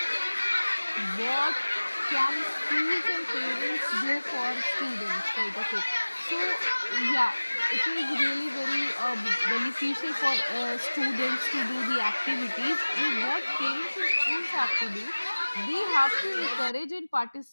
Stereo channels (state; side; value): inverted; both; correlation -1.00